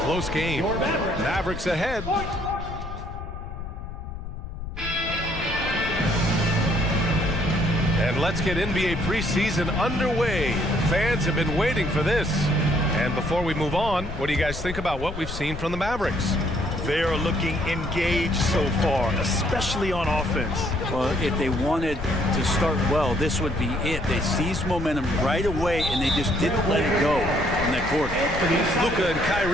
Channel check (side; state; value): left; noise; rumble, 9 dB below the sound